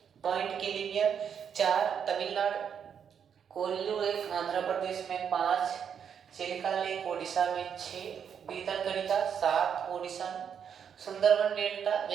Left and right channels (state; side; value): quieter; left; 7.8 dB